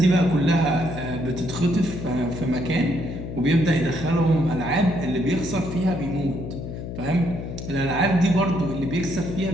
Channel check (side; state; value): left; noise; hum, 8 dB below the sound